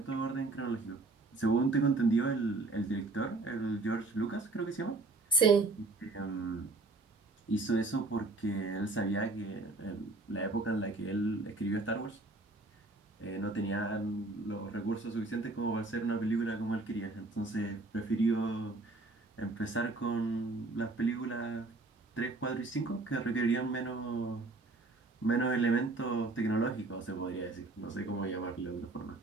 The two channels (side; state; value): left; quieter; 3.2 dB